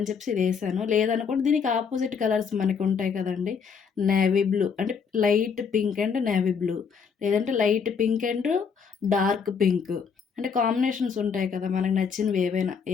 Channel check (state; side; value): quieter; right; 6.2 dB